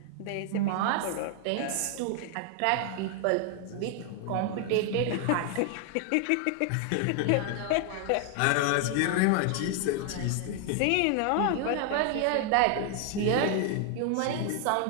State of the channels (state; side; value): different; both; correlation 0.00